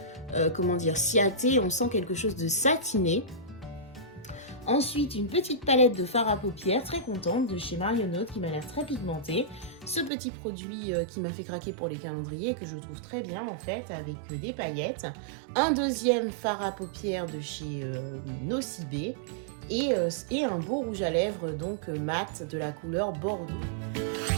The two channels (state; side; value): drops out; left; at 10.1 s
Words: comment dire, Ciaté, on sent quelque chose de satiné. Ensuite une petite palette de fard à paupières, très contente, de chez Marionnaud qui m'a l'air très pigmentée. Ce petit produit qui m'a fait craquer pour les calendriers que je trouve très bien en fait avec des paillettes. Un deuxième fard à paupières de chez Nocibé. Et un beau rouge à lèvres donc mat de la couleur Bordeaux.